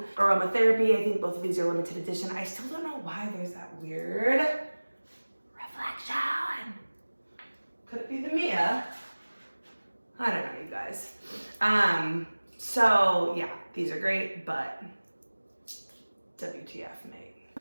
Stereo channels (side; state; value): both; inverted; correlation -1.00